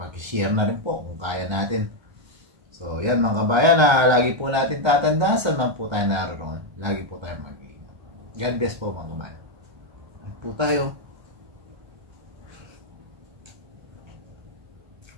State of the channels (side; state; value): left; late; 1.3 ms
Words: na rin po kung kaya natin. So, yan mga kabayan, lagi po natin tatandaan saan man po tayo naroon. Lagi po tayo mag-iingat. God bless po mga kabayan. Lagi po tayo.